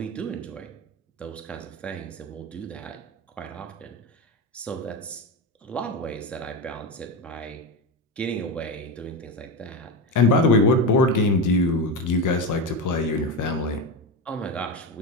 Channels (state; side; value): normal; both; correlation 0.18